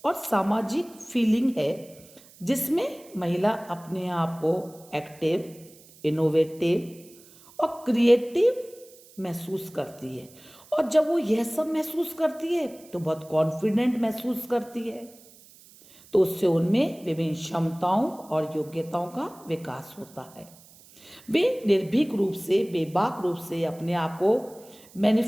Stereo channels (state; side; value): noise; right; hiss, 24 dB below the sound